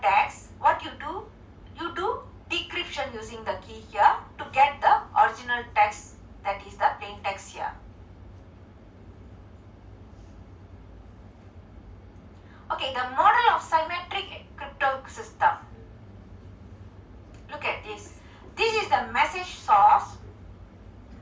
what you do? You do decryption using the key here to get the original text, that is the plain text here. Okay, the model of symmetric crypto system. Look at this. This is the message source.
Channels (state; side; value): identical; both; correlation 1.00